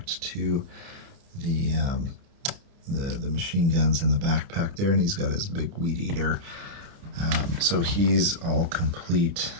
to the machine guns in the backpack there, and he's got his big weed eater. So he's all complete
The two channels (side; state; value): left; late; 30 ms